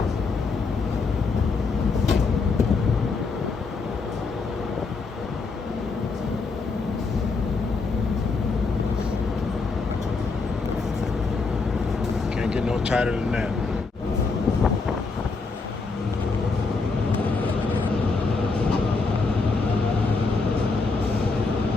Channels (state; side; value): quieter; right; 4.2 dB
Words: Can't get no tighter than that.